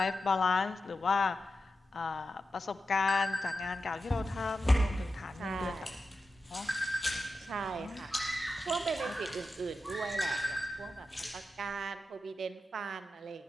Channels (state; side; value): normal; both; correlation 0.91